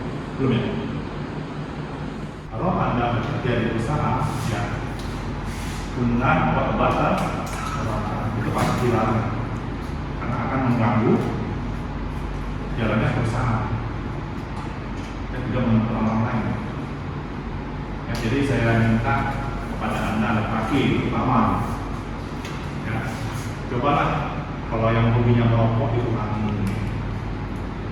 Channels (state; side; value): identical; both; correlation 1.00